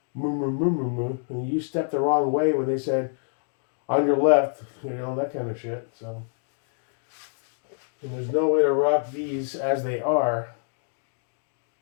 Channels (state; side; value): silent; right; digital silence